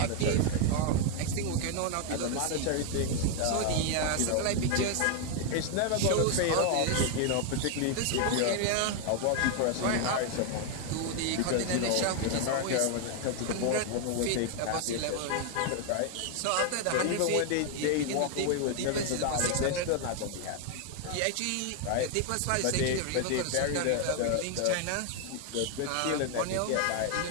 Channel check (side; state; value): both; different; correlation 0.00